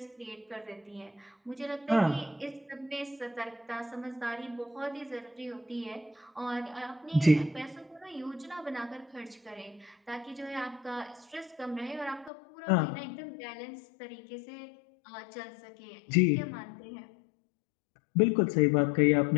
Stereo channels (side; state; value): right; drops out; at 12.3 s